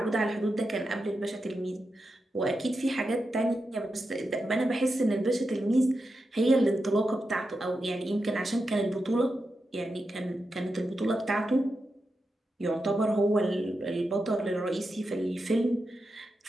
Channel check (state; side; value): normal; both; correlation 0.88